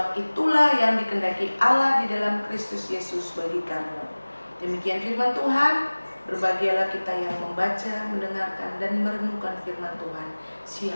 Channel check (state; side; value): inverted; both; correlation -1.00